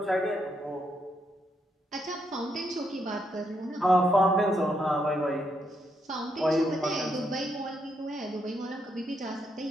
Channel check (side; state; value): both; normal; correlation 0.78